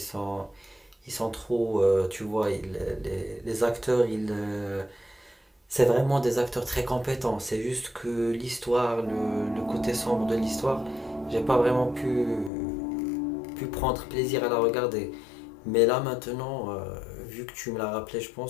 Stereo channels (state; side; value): drops out; right; at 12.5 s